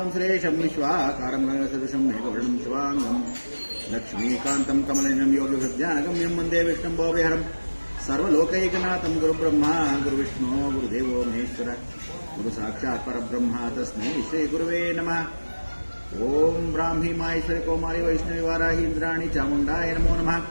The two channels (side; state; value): both; inverted; correlation -1.00